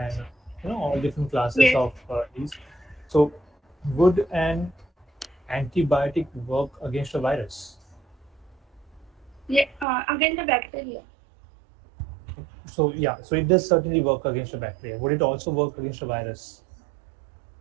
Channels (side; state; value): left; drops out; at 9.9 s